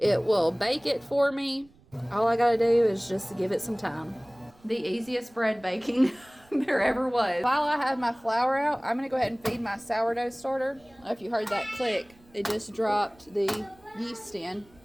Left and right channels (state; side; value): noise; right; rumble, 28 dB below the sound